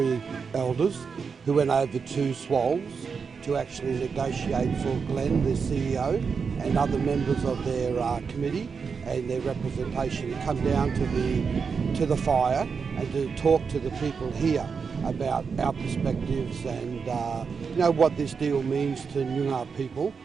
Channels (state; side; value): quieter; left; 5.6 dB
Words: elders who went over to Swallows to actually negotiate for Glenn, the CEO, and other members of their committee and their representation to come down to the fire and to talk to the people here about our perspectives and what this deal means to Nyoongar people